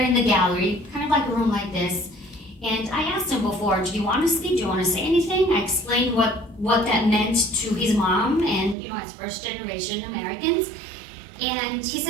in the gallery, kind of like a room like this. And I asked him before, do you want to speak? Do you want to say anything? I explained what that meant to his mom and, as first generation Americans. And he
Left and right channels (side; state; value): left; drops out; at 8.8 s